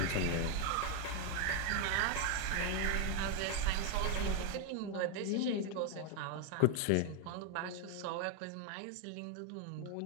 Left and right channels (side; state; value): both; different; correlation 0.01